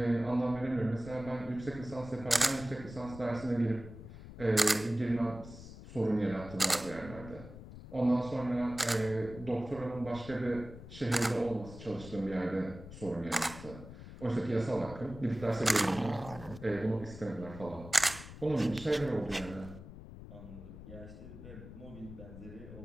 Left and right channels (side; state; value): left; noise; rumble, 14 dB below the sound